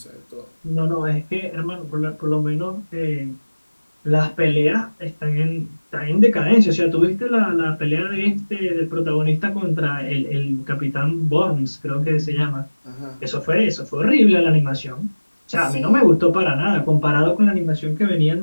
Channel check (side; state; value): both; inverted; correlation -1.00